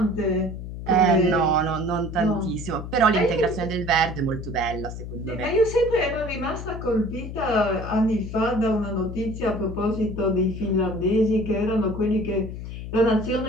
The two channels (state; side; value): noise; left; hum, 8 dB below the sound